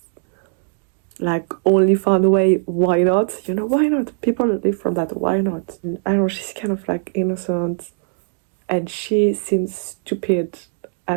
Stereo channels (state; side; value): silent; left; digital silence